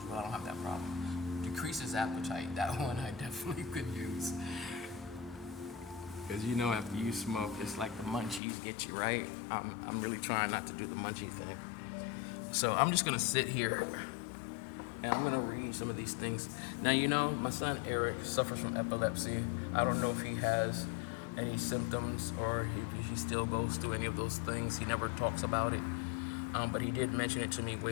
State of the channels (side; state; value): right; drops out; at 8.4 s